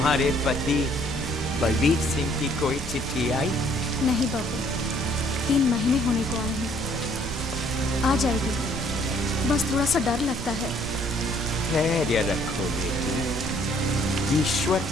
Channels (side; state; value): right; noise; rumble, 9 dB below the sound